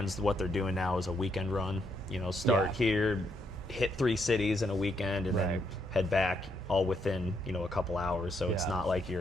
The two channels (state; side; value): normal; both; correlation 0.76